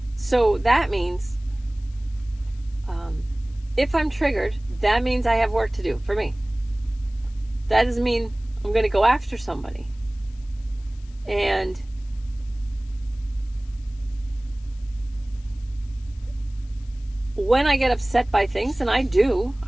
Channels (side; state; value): left; noise; hiss, 29 dB below the sound